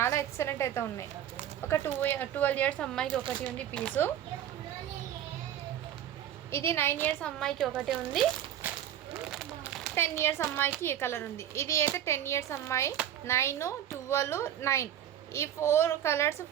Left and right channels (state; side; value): quieter; left; 10.9 dB